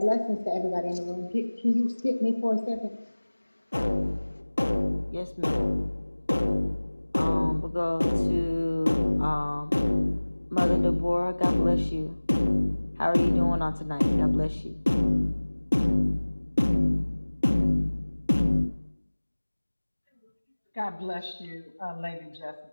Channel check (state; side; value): inverted; both; correlation -1.00